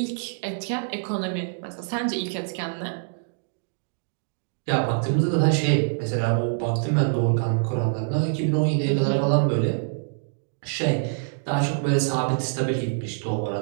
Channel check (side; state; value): left; silent; digital silence